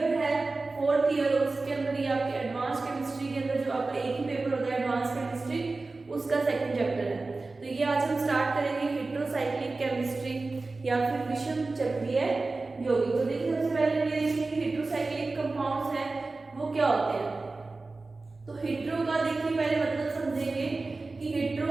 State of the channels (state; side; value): quieter; left; 3.5 dB